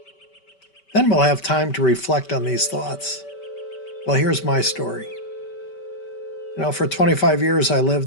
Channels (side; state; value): right; late; 5.2 ms